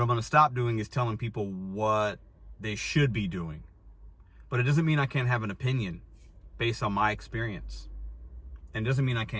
going to stop doing is telling people what they should be doing. But it doesn't mean I can't have an opinion based on my experience. And it doesn't mean I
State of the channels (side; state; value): both; identical; correlation 1.00